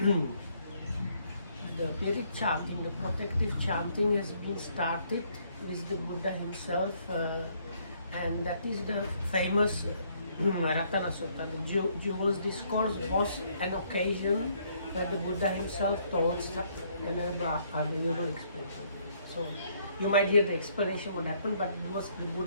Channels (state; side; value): inverted; both; correlation -0.68